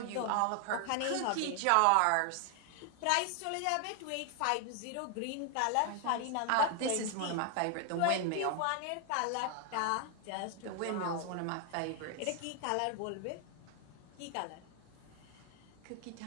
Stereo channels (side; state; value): both; different; correlation 0.00